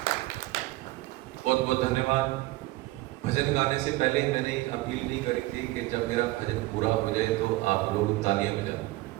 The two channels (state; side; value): quieter; left; 19.3 dB